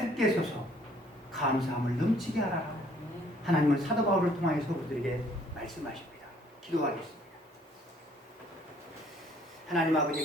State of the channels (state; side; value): normal; both; correlation 0.61